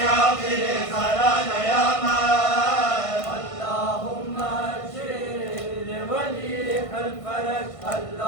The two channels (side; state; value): right; late; 1.5 ms